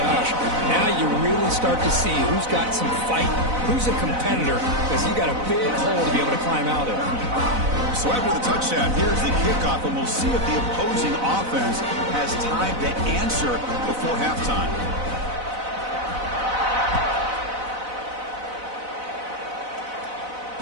now you really start to see who's got some fight, who's a competitor, because you got a big hole to be able to climb out of. So after the touchdown, here's the kickoff, and we'll see if the opposing offense has time to answer before halftime.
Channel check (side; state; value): left; late; 4.0 ms